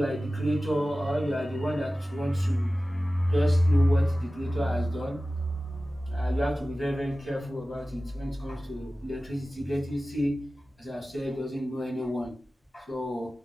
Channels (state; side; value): normal; both; correlation 0.96